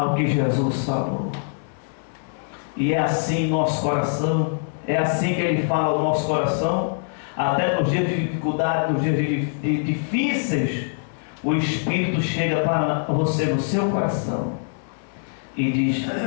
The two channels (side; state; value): right; silent; digital silence